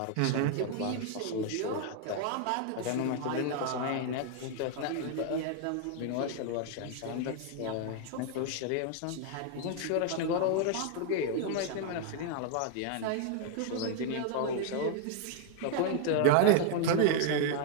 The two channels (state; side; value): different; both; correlation 0.00